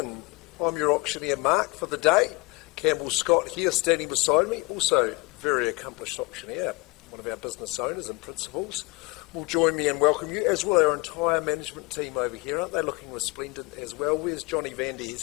I'm your auctioneer Mark for the day. Campbell Scott here standing beside me, also very accomplished auctioneer, one of our business owners and principals, will join me and welcome you, as will our entire management team over here. Aren't they looking resplendent as well? Where's Johnny Vandy?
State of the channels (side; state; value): right; quieter; 25.9 dB